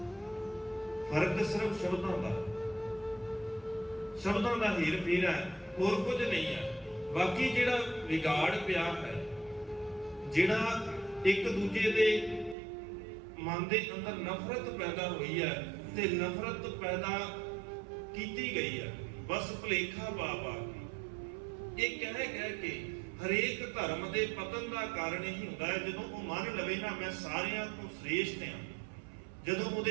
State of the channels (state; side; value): drops out; left; at 12.6 s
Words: ਫਰਕ ਸਿਰਫ ਸ਼ਬਦਾਂ ਦਾ ਹੀਰ ਫੇਰ ਹੈ, ਹੋਰ ਕੁਝ ਨਹੀਂ ਹੈ। ਬਾਕੀ ਜਿਹੜਾ ਵਿਗਾੜ ਪਿਆ ਹੈ, ਜਿਹੜਾ ਇੱਕ ਦੂਜੇ ਦੇ ਮਨ ਦੇ ਅੰਦਰ ਨਫ਼ਰਤ ਪੈਦਾ ਹੋਈ ਹੈ, ਤੇ ਨਫ਼ਰਤ ਪੈਦਾ ਕੀਤੀ ਗਈ ਹੈ ਬਸ ਭੁਲੇਖਾ ਪਾ ਕੇ। ਇਹ ਕਹਿ ਕੇ ਹਰੇਕ ਧਰਮ ਦੇ ਪਤਨ ਦਾ ਕਾਰਨ ਇਹੀ ਹੁੰਦਾ ਹੈ, ਜਦੋਂ ਉਹ ਮੰਨ ਲਵੇ ਨਾ ਮੈਂ ਸਾਰਿਆਂ ਤੋਂ ਸ੍ਰੇਸ਼ਟ ਹਾਂ। ਜਦੋਂ ਉਹਦੇ